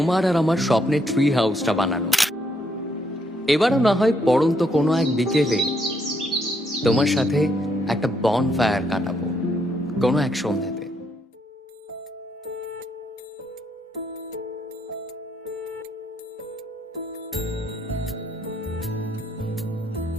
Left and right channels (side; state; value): both; normal; correlation 0.74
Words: আর আমার স্বপ্নের ট্রি হাউসটা বানানো। এবারও না হয় পড়ন্ত কোনো এক বিকেলে তোমার সাথে একটা বন ফায়ার কাটাবো কোনো এক সন্ধ্যাতে।